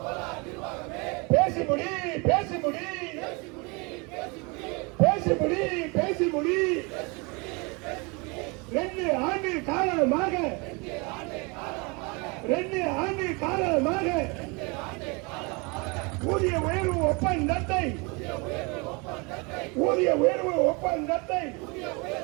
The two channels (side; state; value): left; quieter; 29.0 dB